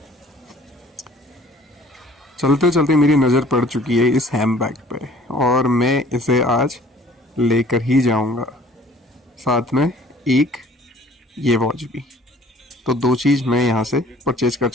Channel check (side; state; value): both; normal; correlation 0.53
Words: चलते चलते मेरी नज़र पड़ चुकी है इस हैंडबैग पे और मैं इसे आज लेकर ही जाऊंगा, साथ में एक ये वॉच भी। तो 2 चीज़ मैं यहाँ से परचेज कर